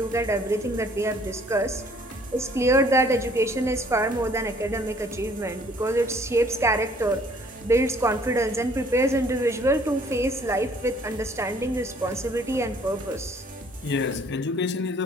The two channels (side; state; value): both; normal; correlation 0.59